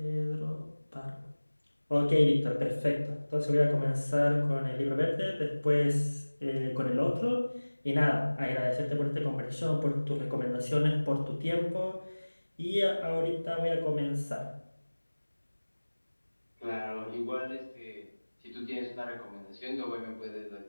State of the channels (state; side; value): inverted; both; correlation -1.00